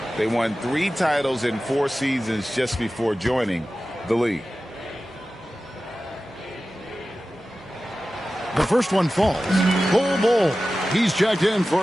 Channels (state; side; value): normal; both; correlation 0.95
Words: They won 3 titles in 4 seasons just before joining the league. The first one falls. Full ball. He's checked in